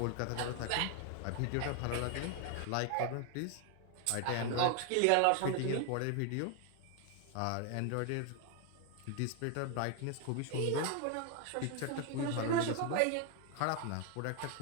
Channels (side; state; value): both; different; correlation 0.01